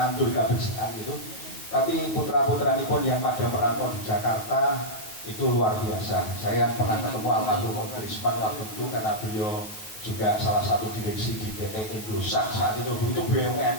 kebersihan gitu. Tapi putra-putra pun yang pada merantau di Jakarta itu luar biasa. Saya pernah ketemu almarhum Om Trisman waktu itu karena beliau juga salah satu direksi di PT Indosat saat itu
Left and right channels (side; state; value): right; late; 9.3 ms